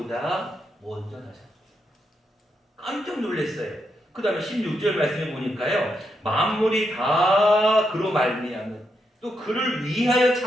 먼저 나셨어요. 깜짝 놀랐어요. 그 다음에 16절 말씀에 보니까요. 만물이 다 그로 말미암은 또 그를 위하여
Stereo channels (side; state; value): both; normal; correlation 0.82